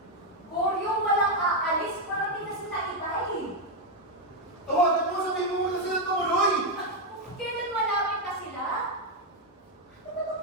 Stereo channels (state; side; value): normal; both; correlation 0.03